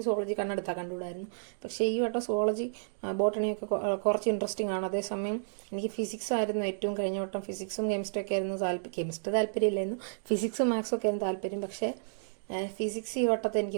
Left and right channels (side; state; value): left; silent; digital silence